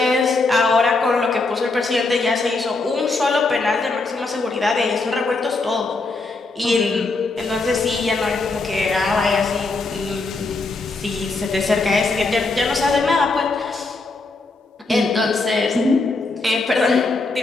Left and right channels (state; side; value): quieter; right; 3.5 dB